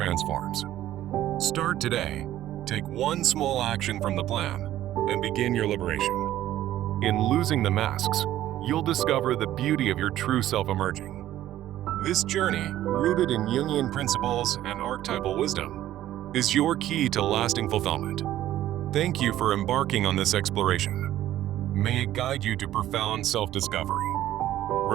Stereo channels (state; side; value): quieter; left; 13.3 dB